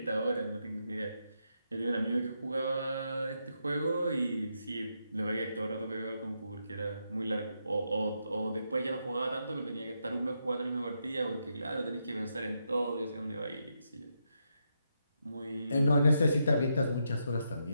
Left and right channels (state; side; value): inverted; both; correlation -0.82